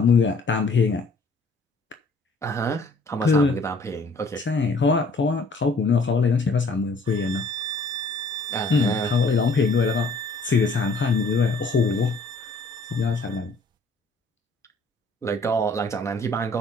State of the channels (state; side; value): quieter; right; 3.1 dB